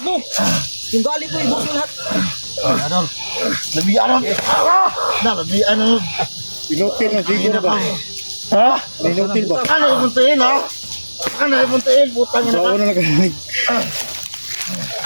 mo. Yung gali ko, ibuhos mo lahat. Adol. Lebih ano? Na, lebih ano? Pinutil na Zigo na ba? Ha? Pinutil ba? Ano yung muntiin, ha? Ano yung muntiin? Putang ina So, ka. ano na kanilig?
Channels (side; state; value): both; inverted; correlation -1.00